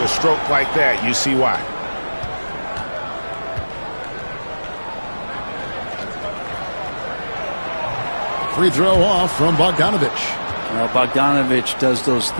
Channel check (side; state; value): both; inverted; correlation -1.00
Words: stroke like that, you see why. Free throw off from Bogdanovich. Well, Bogdanovich does those